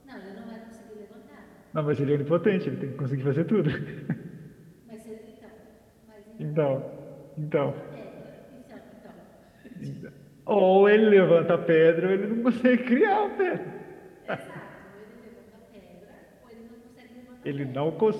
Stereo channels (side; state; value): both; identical; correlation 1.00